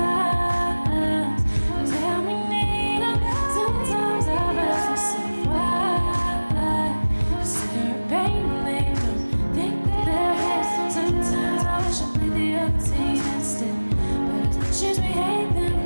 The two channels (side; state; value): both; inverted; correlation -1.00